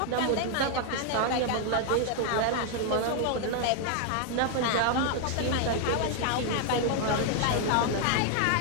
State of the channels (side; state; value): both; different; correlation 0.00